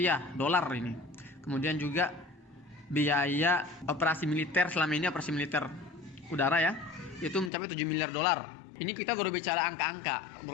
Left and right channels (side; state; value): right; drops out; at 7.5 s